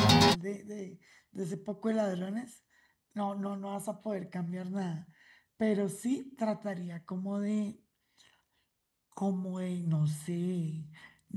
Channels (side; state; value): both; identical; correlation 1.00